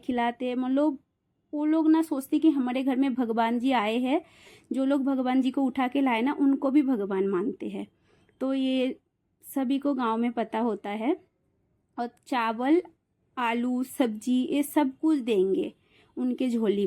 हैं। मतलब वो लोग ना सोचते कि हमारे घर में भगवान जी आए हैं। जो लोग भगवान जी को उठा के लाए ना उनको भी भगवान मानते हैं। तो ये सभी को गांव में पता होता है। और चावल आलू सब्जी ये सब कुछ देंगे उनके झोली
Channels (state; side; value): identical; both; correlation 1.00